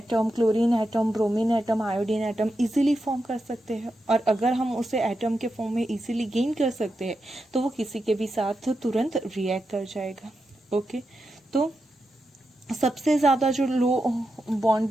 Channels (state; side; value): normal; both; correlation 0.88